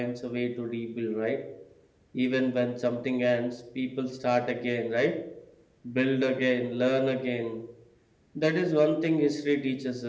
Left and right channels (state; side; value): identical; both; correlation 1.00